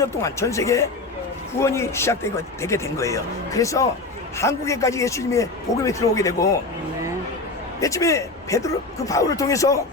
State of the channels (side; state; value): right; quieter; 3.3 dB